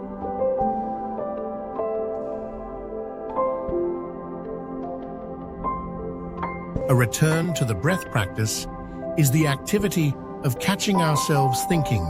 A return to the breath practice is the activity of catching ourselves thinking,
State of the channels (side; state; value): both; identical; correlation 1.00